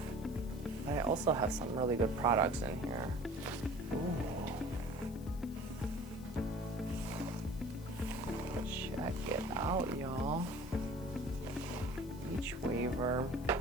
But I also have some really good products in here. Ooh. Check it out, y'all. Beachwaver.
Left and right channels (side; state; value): left; noise; hiss, 22 dB below the sound